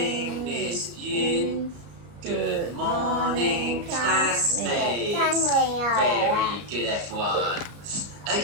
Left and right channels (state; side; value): late; left; 34 ms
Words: Miss Yun. Good morning, classmates. Very good, everyone.